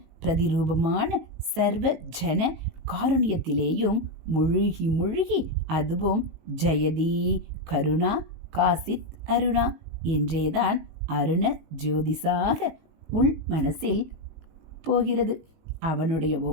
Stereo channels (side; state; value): left; late; 19 ms